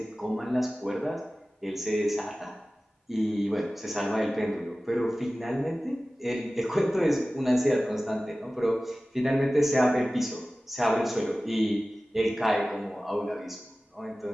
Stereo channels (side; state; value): both; normal; correlation 0.97